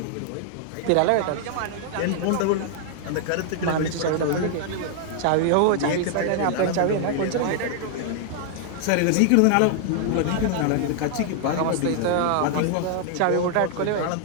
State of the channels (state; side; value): different; both; correlation -0.01